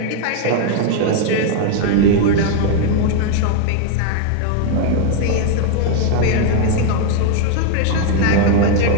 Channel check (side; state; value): both; different; correlation 0.00